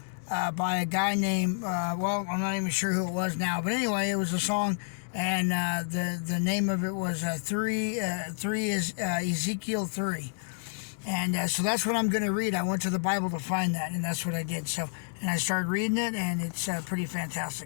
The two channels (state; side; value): silent; right; digital silence